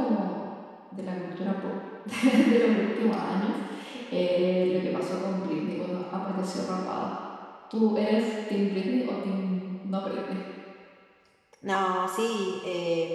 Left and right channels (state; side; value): identical; both; correlation 1.00